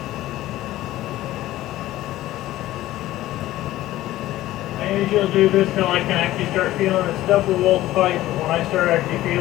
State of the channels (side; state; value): right; quieter; 15.4 dB